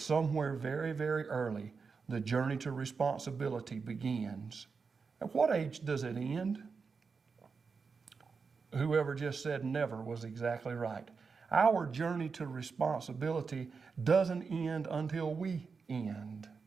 very early, the journey to responsibility begins. At what age does it end? Whoever just said never was exactly right. Our journey to responsibility doesn't end until we end.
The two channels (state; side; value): quieter; left; 5.1 dB